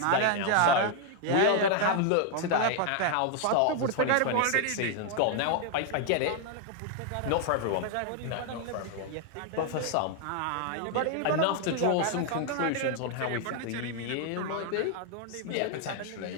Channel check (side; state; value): both; different; correlation 0.00